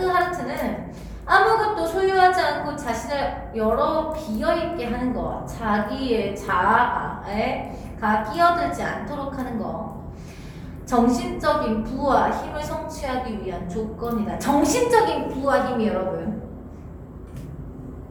아무것도 소유하지 않고 자신을 여러 비어있게 하는 것, 자기의 자아에 끼어들지 않도록 하는 것, 정신적인 부와 힘을 성취하기 위한 조건이다. 정신적인 부와 힘이 여러분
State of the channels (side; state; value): both; identical; correlation 1.00